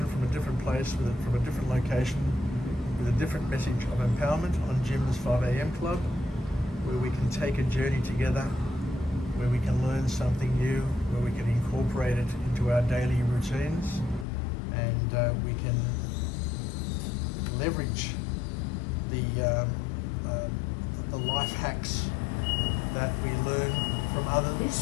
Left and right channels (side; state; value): right; drops out; at 14.2 s